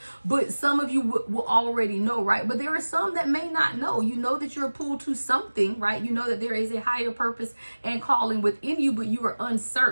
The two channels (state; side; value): inverted; both; correlation -1.00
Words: but some of you will already know, right? But there are some that may not know. You know that you're pulled to something, right? You know that there is a higher purpose and calling within you, but you are